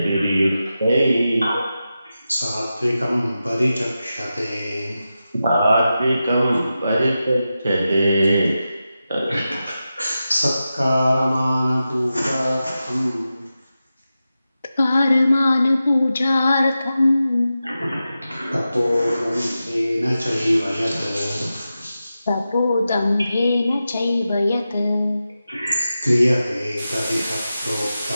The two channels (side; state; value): both; inverted; correlation -0.92